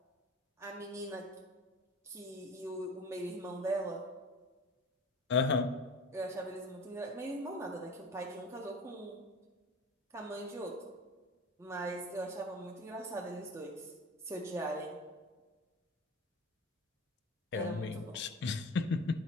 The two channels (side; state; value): both; normal; correlation 0.37